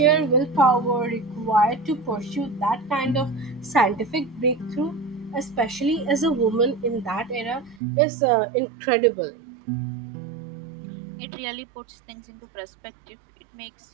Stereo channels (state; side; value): drops out; left; at 7.8 s